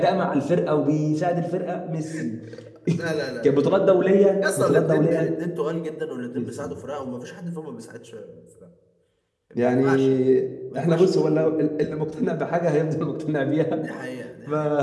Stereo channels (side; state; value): both; identical; correlation 1.00